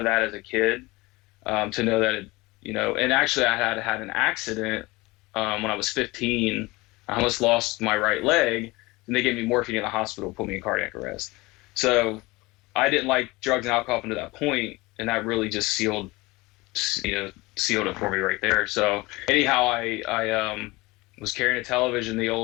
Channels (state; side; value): quieter; right; 22.2 dB